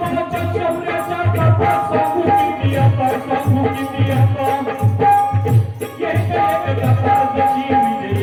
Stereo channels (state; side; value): identical; both; correlation 1.00